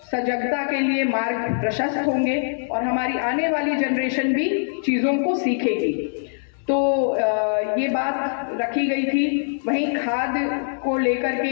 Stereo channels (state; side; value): silent; right; 64 dB below the other